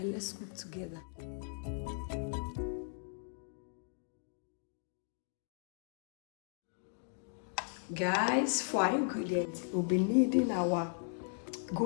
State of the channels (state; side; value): silent; right; digital silence